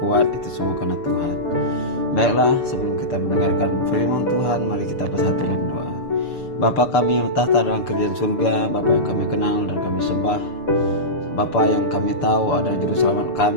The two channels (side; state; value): right; late; 6.9 ms